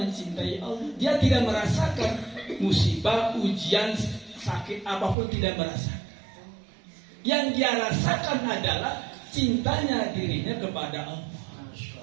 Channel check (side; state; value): left; drops out; at 5.2 s